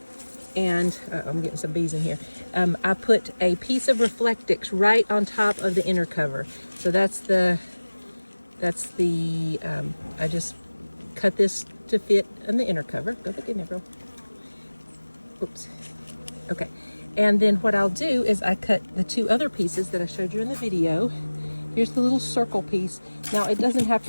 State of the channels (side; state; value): both; inverted; correlation -1.00